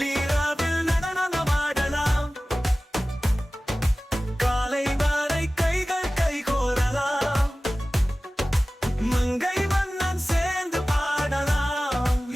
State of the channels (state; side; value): normal; both; correlation 0.97